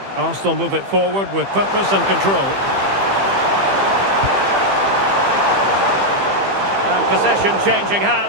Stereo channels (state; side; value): late; left; 15 ms